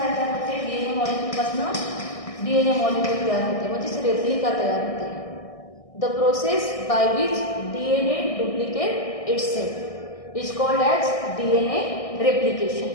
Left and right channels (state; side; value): late; right; 1.6 ms